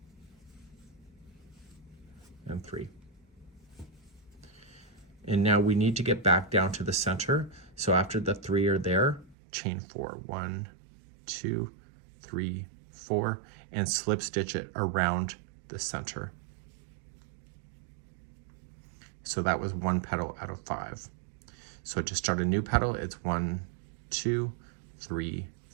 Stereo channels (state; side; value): drops out; left; at 9.3 s